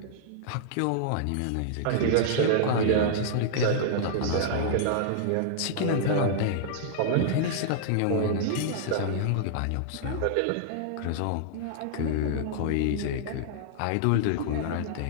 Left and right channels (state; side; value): different; both; correlation -0.02